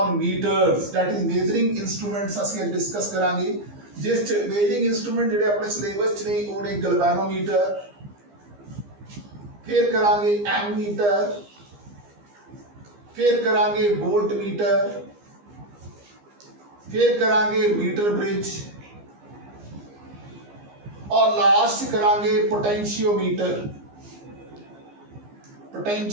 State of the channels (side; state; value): left; late; 15 ms